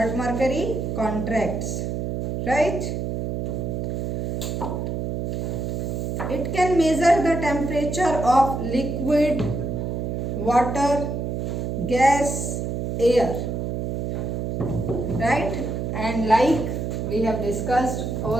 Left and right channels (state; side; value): noise; right; hum, 2 dB below the sound